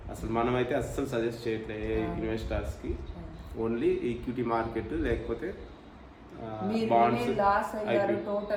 అసలు మనమైతే అస్సలు సజెస్ట్ చేయట్లేదు ఇన్వెస్టర్స్కి. ఓన్లీ ఈక్విటీ మార్కెట్ లేకపోతే బాండ్స్. లాస్ అయ్యారు,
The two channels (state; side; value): identical; both; correlation 1.00